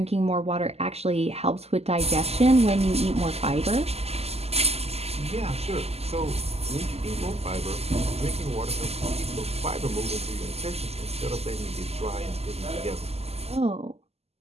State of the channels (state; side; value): late; left; 0.30 ms